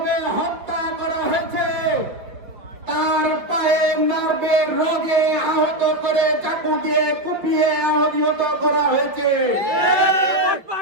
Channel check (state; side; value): late; left; 5.2 ms